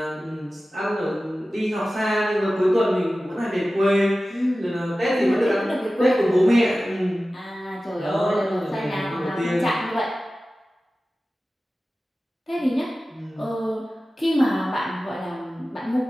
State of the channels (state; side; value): normal; both; correlation 0.96